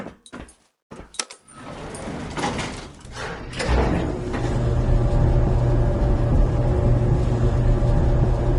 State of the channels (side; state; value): both; identical; correlation 1.00